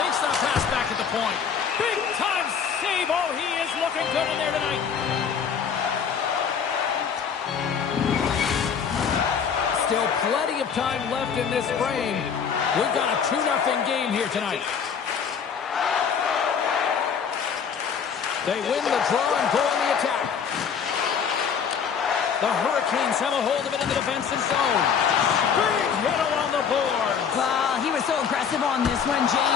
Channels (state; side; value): quieter; right; 7.0 dB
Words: that pass back at the point. Big-time save. Oh, he is looking good in there tonight. Still plenty of time left in this frame. We've got a 2-0 game here tonight. They win the draw and go on the attack. The Hurricanes have a hold of it in the defensive zone. Big hit along the board. Well, he was so aggressive on this one,